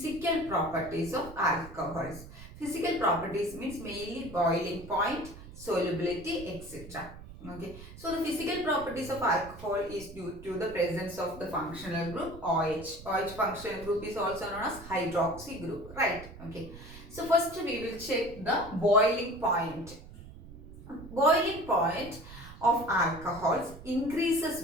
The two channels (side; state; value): right; noise; rumble, 16 dB below the sound